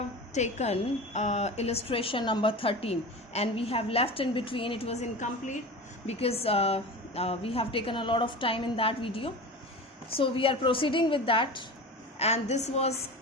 taken illustration number 13 and we have left in between. It was incomplete because we have taken a lot of time in that video. So we are proceeding with that, and this was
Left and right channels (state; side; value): normal; both; correlation 0.31